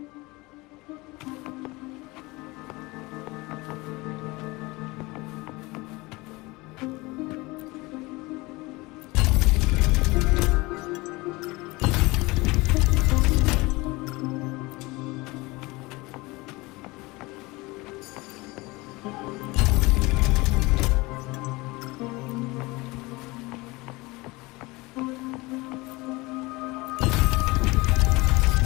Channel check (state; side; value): quieter; right; 22.9 dB